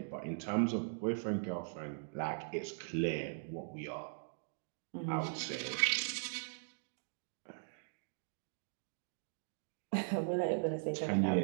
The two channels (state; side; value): silent; left; digital silence